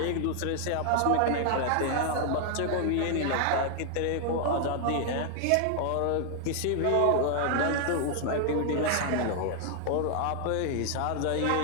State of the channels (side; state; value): both; different; correlation 0.00